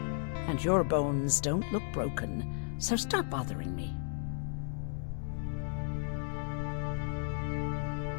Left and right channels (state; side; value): silent; right; digital silence